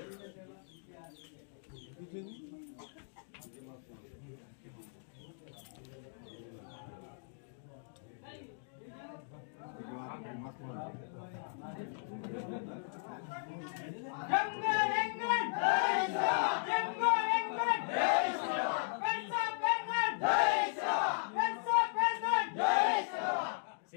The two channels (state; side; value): silent; right; digital silence